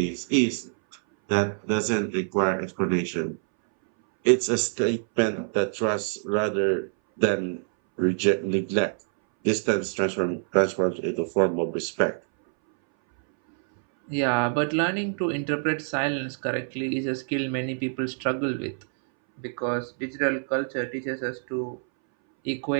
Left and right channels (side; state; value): left; silent; 61 dB below the other